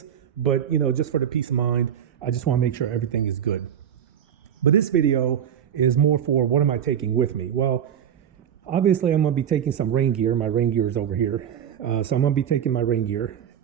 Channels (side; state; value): left; quieter; 9.1 dB